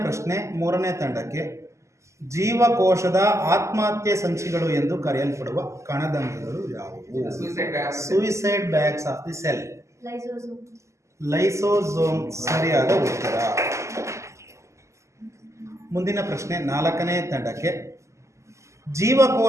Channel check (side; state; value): left; late; 0.14 ms